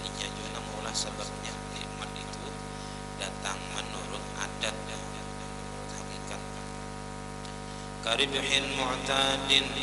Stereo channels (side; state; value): both; identical; correlation 1.00